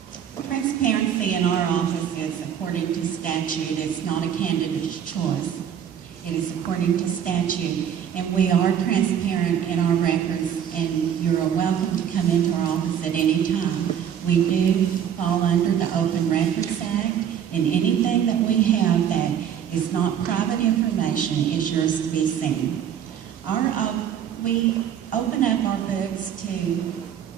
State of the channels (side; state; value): left; quieter; 9.0 dB